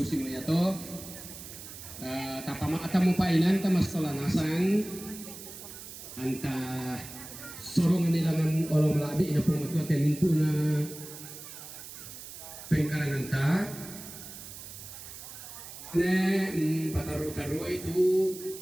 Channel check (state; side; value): noise; right; hiss, 13 dB below the sound